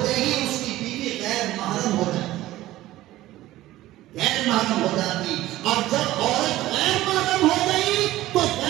ہی اس کی بیوی غیر محرم ہو جاتی، غیر محرم ہو جاتی. اور جب عورت غیر محرم ہو گئی تو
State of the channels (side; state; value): left; quieter; 15.8 dB